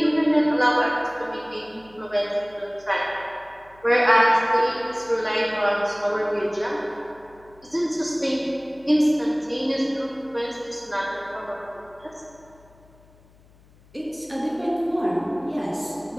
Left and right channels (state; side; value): noise; left; hum, 28 dB below the sound